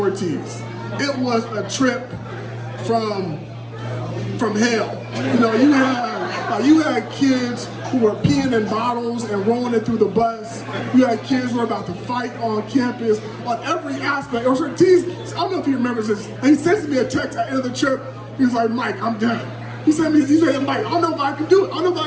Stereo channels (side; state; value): both; identical; correlation 1.00